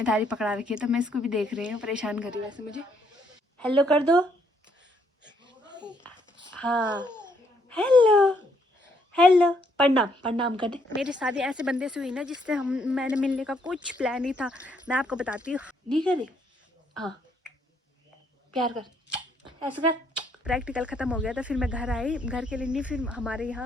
पकड़ा रखी है, तो मैं इसको भी देख रही हूँ, परेशान कर रही हूँ वैसे मुझे। हेलो कर दो। हाँ हेलो हेलो, प्रणाम प्रणाम कर दे। मेरी शादी ऐसे बंदे से हुई ना जिससे मैंने मिलने का कुछ प्लान नहीं था, मैं आपको बताती हूँ। नहीं करे, हाँ प्यार कर, ऐसा कर। प्रैक्टिकल ख़त्म हो गया था, फिर मैं घर आई, घर के लिए नहीं, फिर हमारे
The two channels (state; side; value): normal; both; correlation 0.71